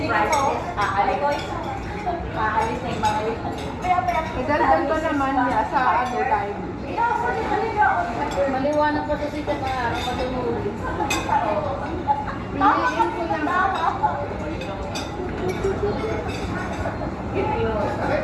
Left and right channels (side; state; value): both; identical; correlation 1.00